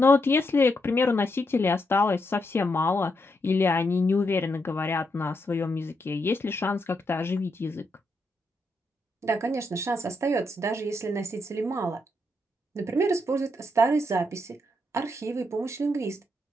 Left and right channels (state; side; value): normal; both; correlation 0.80